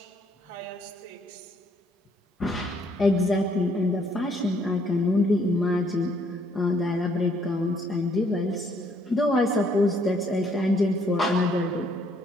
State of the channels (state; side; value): normal; both; correlation 0.67